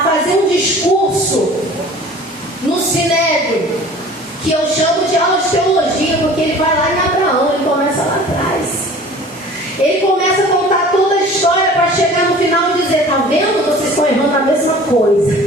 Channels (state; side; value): normal; both; correlation 0.45